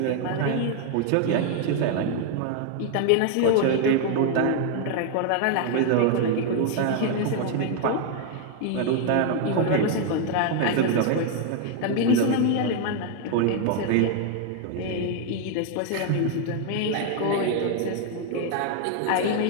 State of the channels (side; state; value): both; different; correlation 0.00